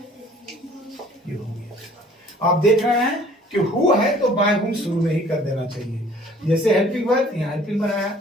ये हो गया। आप देख रहे हैं कि हु है तो बाय हुम शुरू में ही कर देना चाहिए। जैसे हेल्पिंग वर्ब, यहाँ हेल्पिंग बनाया,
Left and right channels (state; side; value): normal; both; correlation 0.53